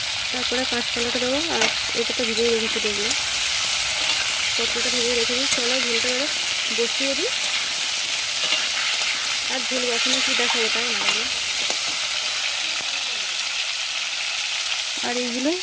তারপরে কাঁচকলাটা দেবো। আর এটা তো ভিজিয়ে রেখেছি, দেখবো পটলটা ভিজিয়ে রেখেছি। চলো ঝোলটা এবার বসিয়ে দিই, আর ঝোল বসানো কি দেখাবো, তাই না? আর এইগুলো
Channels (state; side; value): identical; both; correlation 1.00